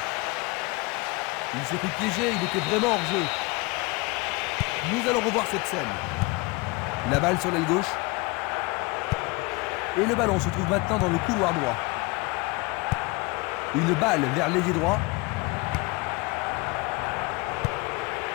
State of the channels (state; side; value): quieter; right; 25.3 dB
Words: Il s'est fait piéger, il était vraiment hors jeu. Nous allons revoir cette scène. La balle sur l'aile gauche. Et le ballon se trouve maintenant dans le couloir droit. Une balle vers l'ailier droit.